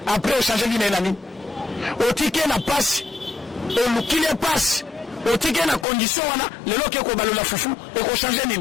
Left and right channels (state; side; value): drops out; right; at 5.9 s